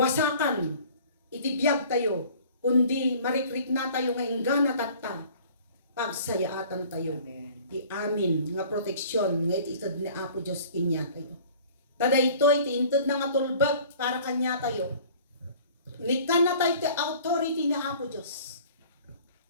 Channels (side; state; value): both; inverted; correlation -0.49